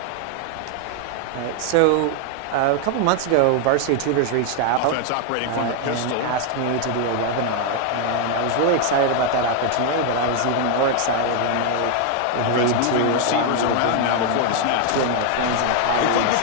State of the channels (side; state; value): both; different; correlation 0.00